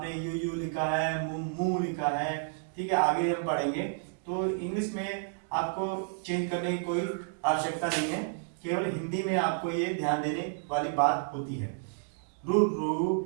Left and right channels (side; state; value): left; silent; digital silence